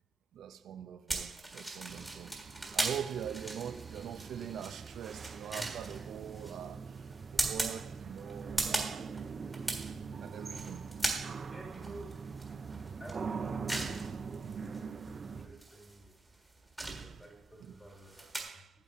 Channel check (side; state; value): left; quieter; 3.6 dB